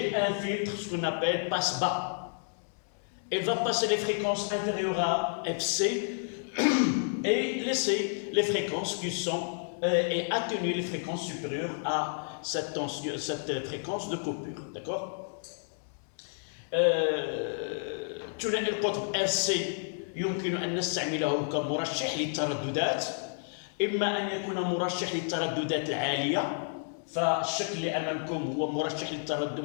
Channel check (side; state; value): right; silent; digital silence